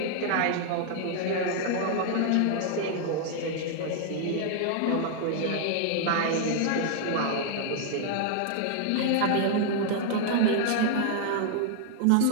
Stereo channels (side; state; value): both; different; correlation 0.00